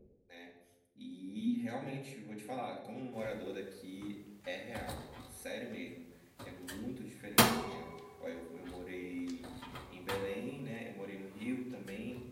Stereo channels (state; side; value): identical; both; correlation 1.00